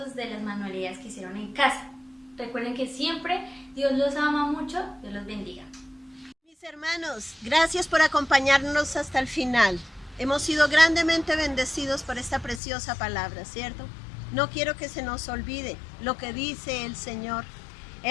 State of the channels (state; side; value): drops out; right; at 12.6 s